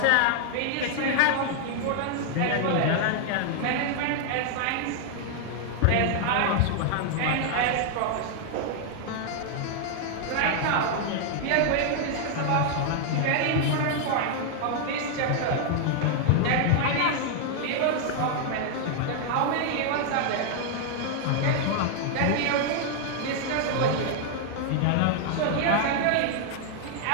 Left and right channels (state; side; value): different; both; correlation 0.00